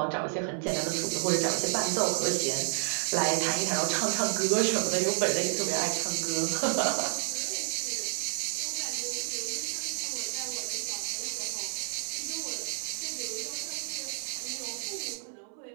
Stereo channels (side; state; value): left; silent; 58 dB below the other